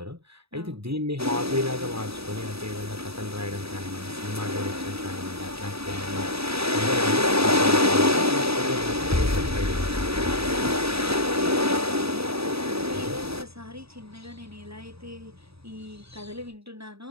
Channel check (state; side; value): late; left; 0.77 ms